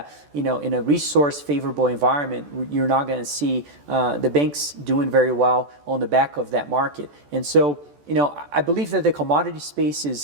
in a resource favorable environment, you're not going to see the banks doing very well on the back of that market. And so, I believe that the commodity space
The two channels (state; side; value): late; left; 14 ms